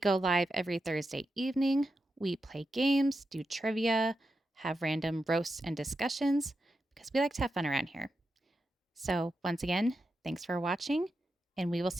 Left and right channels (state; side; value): normal; both; correlation 0.88